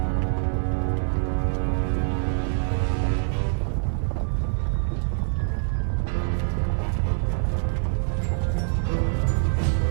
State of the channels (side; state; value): left; silent; digital silence